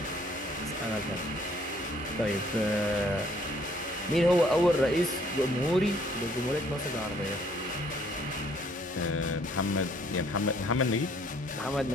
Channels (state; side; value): normal; both; correlation 0.62